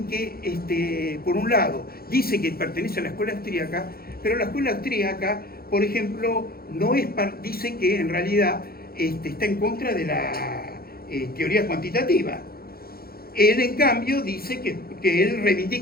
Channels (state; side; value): late; right; 0.44 ms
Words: que, por un lado, dice que pertenece a la escuela austríaca, pero la escuela austríaca, por ejemplo, dice que en realidad está en contra de la teoría cuantitativa. Él, en cambio, dice que él